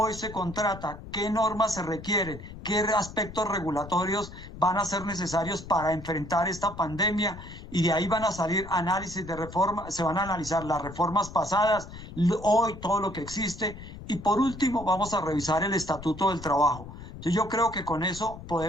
se contrata, qué normas se requieren, qué aspectos regulatorios van a ser necesarios para enfrentar esta pandemia, y de ahí van a salir análisis de reforma, se van a analizar las reformas pasadas, hoy todo lo que existe, y por último vamos a revisar el Estatuto del Trabajo. Entonces yo creo que con eso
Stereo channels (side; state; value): left; noise; rumble, 13 dB below the sound